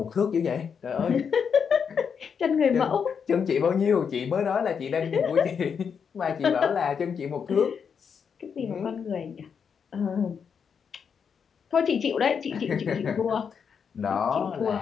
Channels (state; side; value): quieter; right; 6.7 dB